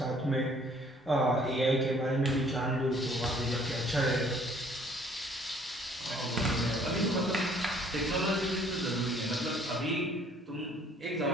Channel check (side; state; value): both; normal; correlation 0.59